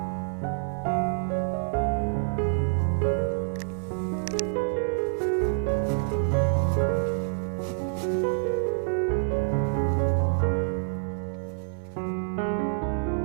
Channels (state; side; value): silent; left; digital silence